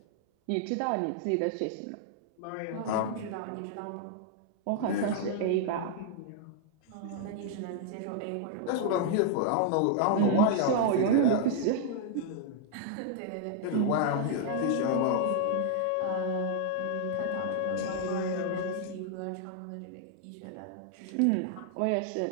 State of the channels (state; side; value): different; both; correlation -0.01